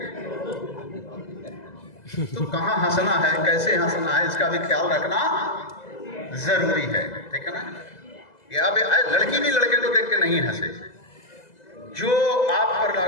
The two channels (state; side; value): late; right; 2.0 ms